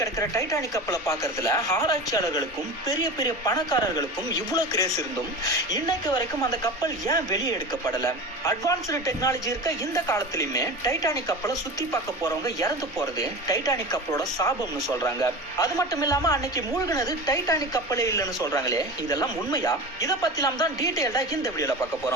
கிடக்கிற டைட்டானிக் கப்பலை பார்க்கறதுல ஆராய்ச்சியாளர்களுக்கும் பெரிய பெரிய பணக்காரர்களுக்கும் இவ்வளவு கிரேஸ் இருந்தும் இன்னைக்கு வரைக்கும் அந்த கப்பல் ஏன் வெளியே எடுக்கப்படல? அட்வான்ஸ்டு டெக்னாலஜி இருக்க இந்த காலத்திலுமே டைட்டானிக் கப்பலை சுத்தி பார்க்க போறவங்க இறந்து போறது டைட்டானிக் கப்பலோட சாபம்னு சொல்றாங்க. அது மட்டும் இல்லாம அன்னைக்கு மூழ்கினது டைட்டானிக் கப்பலே இல்லைன்னு சொல்றாங்களே, இதெல்லாம் உண்மையா? இத பத்திலாம் தான் டீடைல்டா இந்த வீடியோல பார்க்க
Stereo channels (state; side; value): normal; both; correlation 0.30